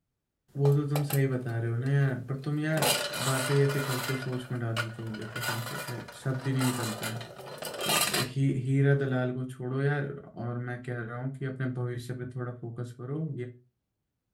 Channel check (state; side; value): identical; both; correlation 1.00